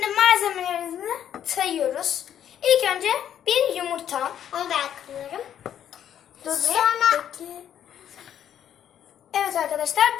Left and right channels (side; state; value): right; quieter; 9.9 dB